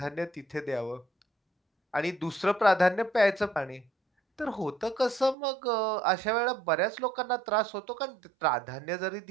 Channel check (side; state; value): left; drops out; at 5.4 s